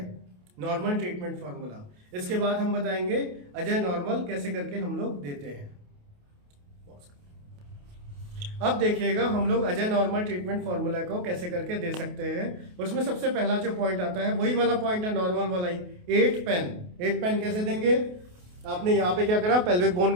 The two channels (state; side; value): late; left; 28 ms